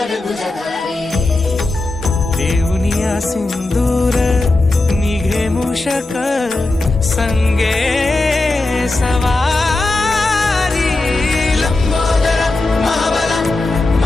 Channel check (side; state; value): right; quieter; 3.0 dB